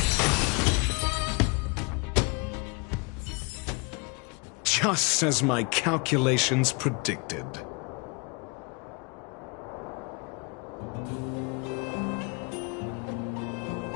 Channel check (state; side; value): quieter; right; 31.2 dB